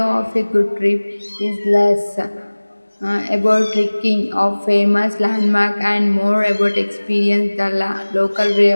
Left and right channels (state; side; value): inverted; both; correlation -1.00